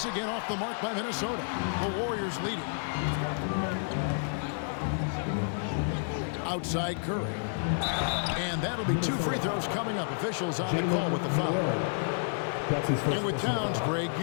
again off the mark by Minnesota. The Warriors lead it. Outside Curry. And that'll be 2 free throws coming up. Officials on the call with the foul. And with Towns, Greg,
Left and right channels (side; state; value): right; silent; 58 dB below the other